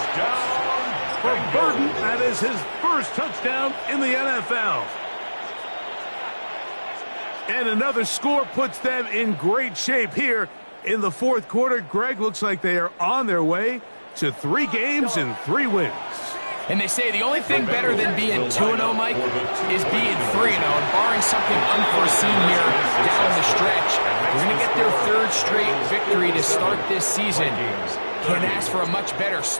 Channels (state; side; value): inverted; both; correlation -1.00